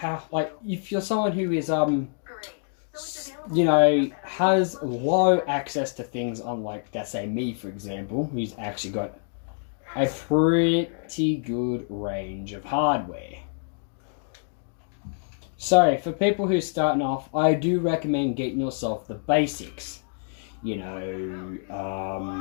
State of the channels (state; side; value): silent; right; digital silence